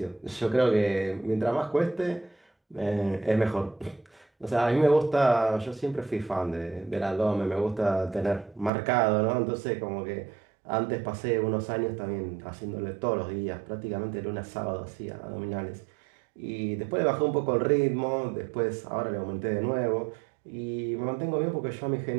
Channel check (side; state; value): left; drops out; at 8.7 s